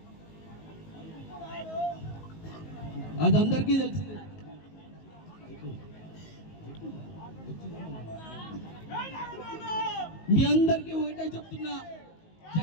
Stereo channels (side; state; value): right; late; 19 ms